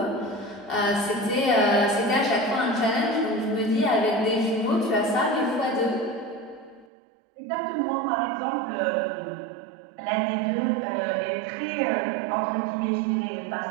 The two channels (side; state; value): left; drops out; at 6.9 s